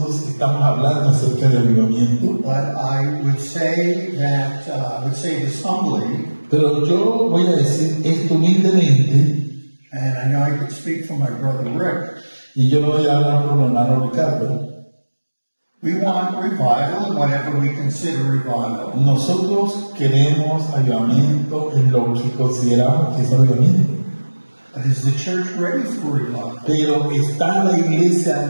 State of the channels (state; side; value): inverted; both; correlation -1.00